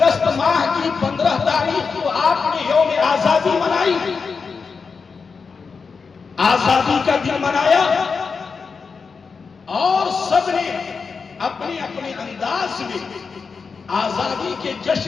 ماہ کی 15 تاریخ کو آپ نے یوم آزادی منائی، آزادی کا دن منایا، اور سب نے اپنے اپنے انداز میں آزادی کے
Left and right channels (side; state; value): right; quieter; 5.2 dB